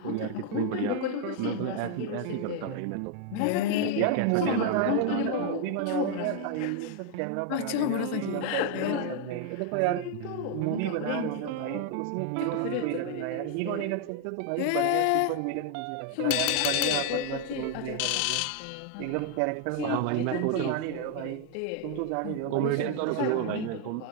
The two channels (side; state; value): both; different; correlation 0.00